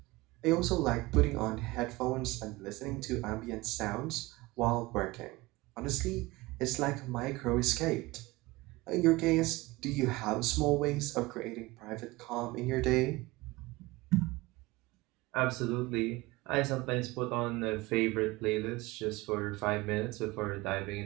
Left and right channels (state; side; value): quieter; left; 21.2 dB